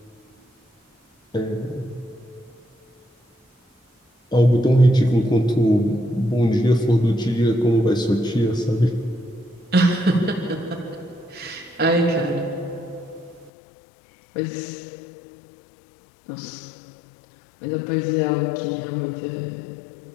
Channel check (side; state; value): right; drops out; at 13.5 s